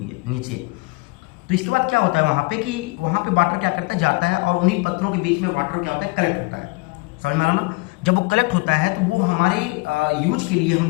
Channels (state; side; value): quieter; right; 26.6 dB